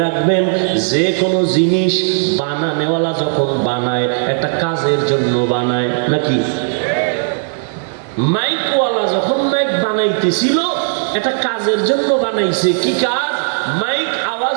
রাখবেন, যে কোনো জিনিস বানানেওয়ালা যখন বানায়, একটা কাজের জন্য বানায় নাকি? মাইকওয়ালা যখন মাইক বানাইতেছিল, এটা কাজের জন্য বানাইছে। কি কাজ? মাইক আওয়াজ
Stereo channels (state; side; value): silent; left; 58 dB below the other